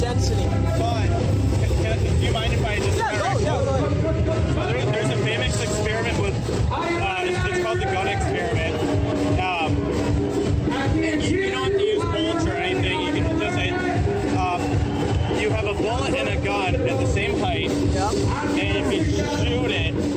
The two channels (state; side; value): identical; both; correlation 1.00